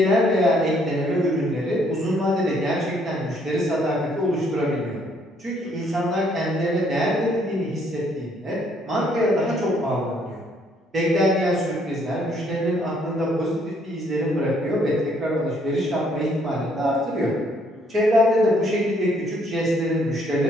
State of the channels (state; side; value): normal; both; correlation 0.67